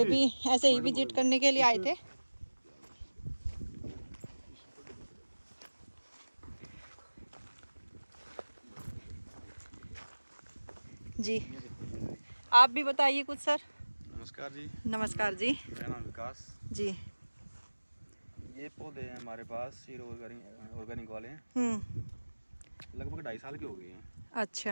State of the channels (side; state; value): both; inverted; correlation -1.00